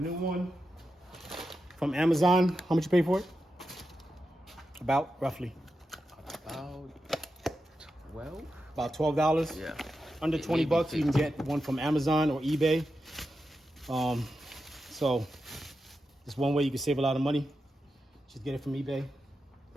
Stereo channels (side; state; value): both; normal; correlation 0.89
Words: one from Amazon. How much you pay for it? About, roughly? About 12? About $12? Yeah. Under 20 bucks, you can get one from Amazon or eBay. So it's one way you can save a lot of money. Just get it from eBay